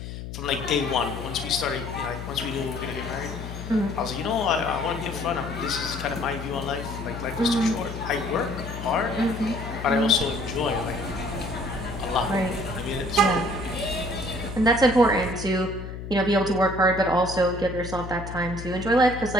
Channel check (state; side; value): noise; left; hum, 9 dB below the sound